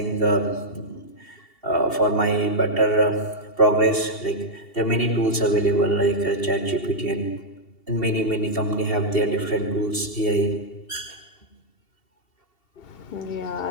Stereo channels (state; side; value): late; right; 2.7 ms